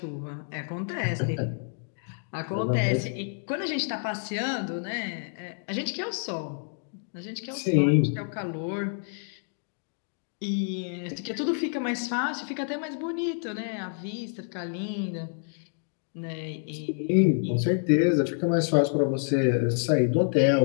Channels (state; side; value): silent; right; digital silence